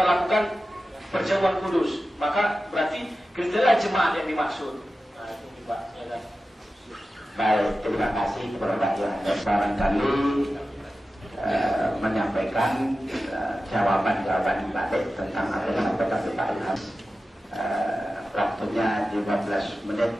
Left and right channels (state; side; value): normal; both; correlation 0.94